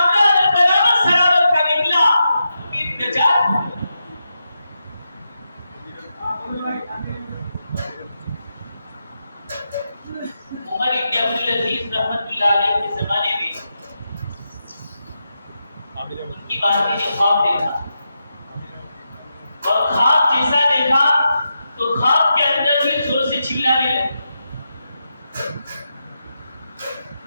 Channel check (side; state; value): both; inverted; correlation -0.87